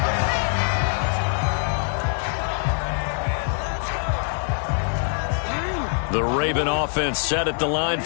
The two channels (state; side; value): silent; right; 63 dB below the other